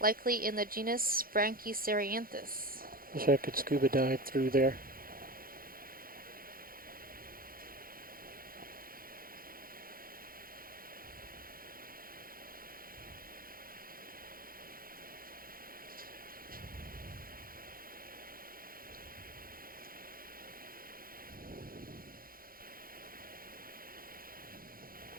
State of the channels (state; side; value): late; left; 0.42 ms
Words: likely in the genus Brachycerianthus. Wish I could scuba dive through there.